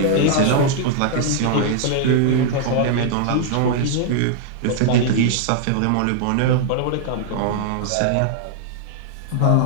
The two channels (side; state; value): both; different; correlation -0.01